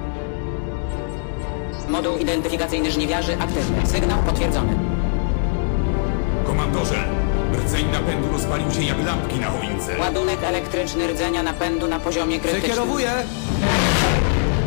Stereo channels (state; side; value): silent; right; digital silence